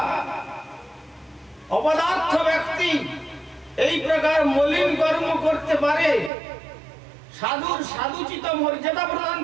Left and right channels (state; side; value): drops out; left; at 6.3 s